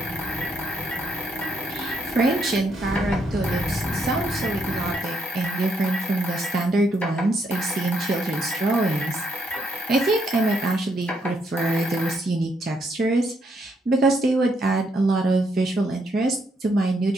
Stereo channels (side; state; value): both; normal; correlation 0.75